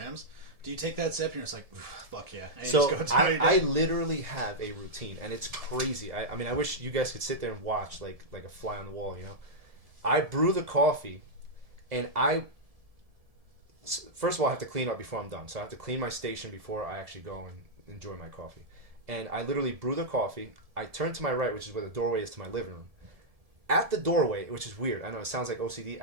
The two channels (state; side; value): late; left; 1.7 ms